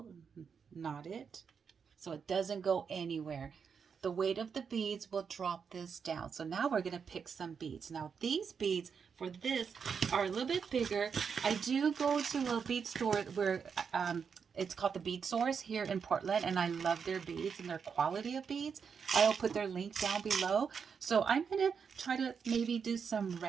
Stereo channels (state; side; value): quieter; left; 6.4 dB